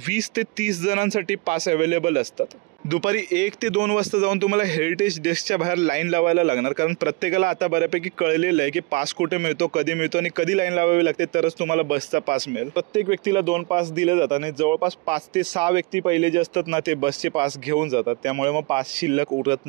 20 ते 30 जणांसाठी पास अवेलेबल असतात. दुपारी 1 ते 2 वाजता जाऊन तुम्हाला हेरिटेज डेस्कच्या बाहेर लाईन लावायला लागणार, कारण प्रत्येकाला आता बऱ्यापैकी कळलेलं आहे की पास कुठे मिळतो, कधी मिळतो आणि कधी लाईन लावावी लागते, तरच तुम्हाला बसचा पास मिळेल. प्रत्येक व्यक्तीला 2 पास दिले जातात आणि जवळपास 5 ते 6 व्यक्ती पहिले जे असतात ना, ते बसचे पास घेऊन जातात. त्यामुळे मग पास शिल्लक उरत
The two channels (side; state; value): left; quieter; 26.4 dB